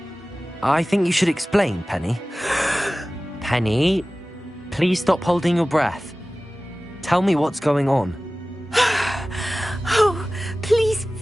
I think you should explain, Penny. Penny, please stop holding your breath. Tell me what's going on. Oh, please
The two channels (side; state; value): both; normal; correlation 0.97